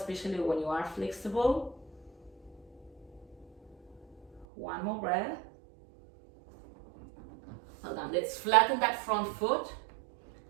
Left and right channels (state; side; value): drops out; left; at 4.5 s